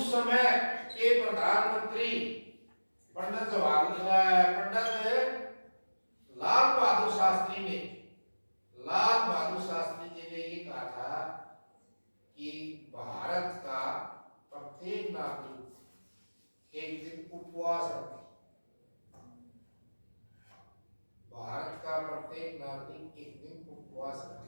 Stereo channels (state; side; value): inverted; both; correlation -1.00